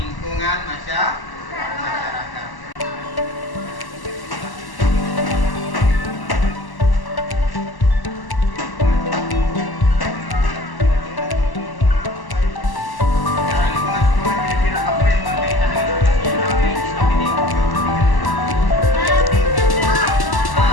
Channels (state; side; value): late; right; 1.1 ms